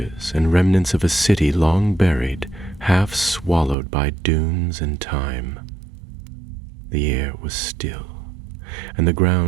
and remnants of a city long buried, half swallowed by dunes and time. The air was still, and the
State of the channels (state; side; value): drops out; left; at 3.8 s